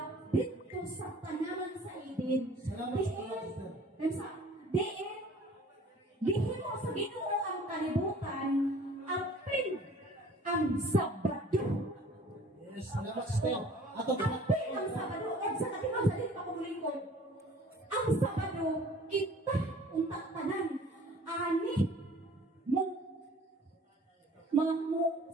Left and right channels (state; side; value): normal; both; correlation 0.50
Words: dito sa tanaman sa Eden. Dihin mo sa Ginoo ang kalibutan, apil ang Sabado. Yes, salamat sister. Apil ang Sabado, o sa katimaw sa din pakumuling ko. Ang Sabado, kita untak tanan, ani mo